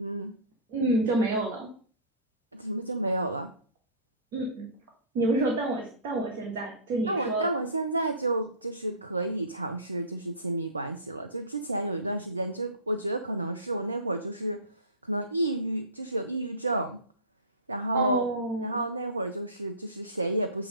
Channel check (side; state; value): both; inverted; correlation -0.34